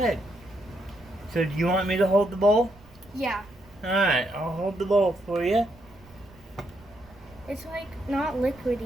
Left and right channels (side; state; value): right; noise; rumble, 25 dB below the sound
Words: So do you want me to hold the bowl? Yeah. Alright, I'll hold the bowl for you. It's like not